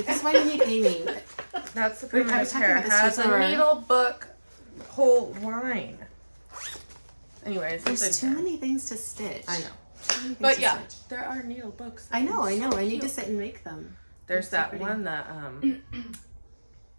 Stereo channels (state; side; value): inverted; both; correlation -1.00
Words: is why we need Aimee. That's the I primitive was talking hair. about It this has before. a needle book whole line. Anyways, There's too many things to stitch. I know. Too many things But to yeah, stitch. there are needle books. I know. I So need to cute. sit and make them. There's They're so that pretty. one that